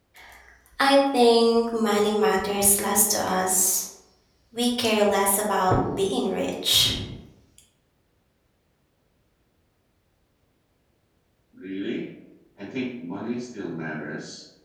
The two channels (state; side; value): identical; both; correlation 1.00